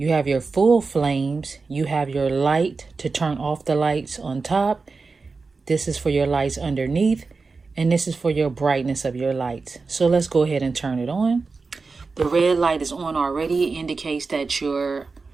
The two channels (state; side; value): quieter; left; 4.3 dB